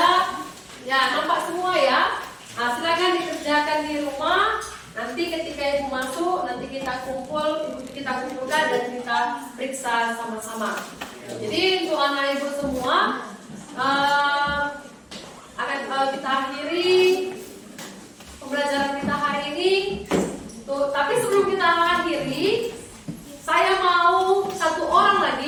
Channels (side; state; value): both; identical; correlation 1.00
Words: Ya, nampak semua ya. Nah, silakan dikerjakan di rumah. Nanti ketika ibu masuk, nanti kita kumpulkan dan kita periksa sama-sama. Jadi untuk anak ibu semua akan kita akhiri pembelajaran kita hari ini. Tapi sebelum kita akhiri, saya mau satu orang